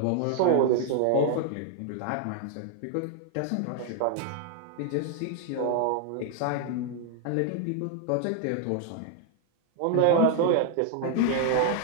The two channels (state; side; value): different; both; correlation 0.00